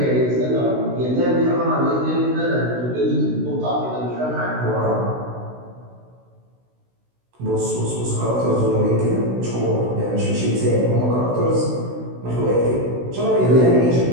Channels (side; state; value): left; late; 16 ms